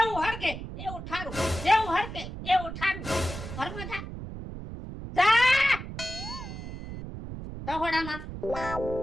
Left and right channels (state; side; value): noise; right; rumble, 9 dB below the sound